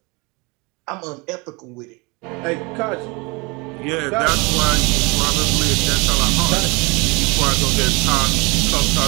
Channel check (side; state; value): left; quieter; 27.6 dB